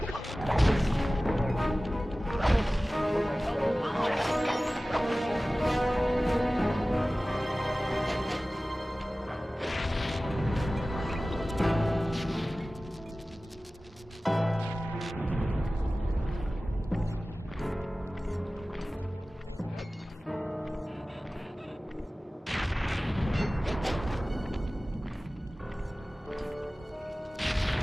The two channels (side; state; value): both; normal; correlation 0.97